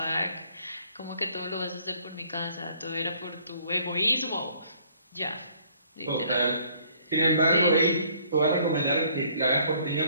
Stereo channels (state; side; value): inverted; both; correlation -0.61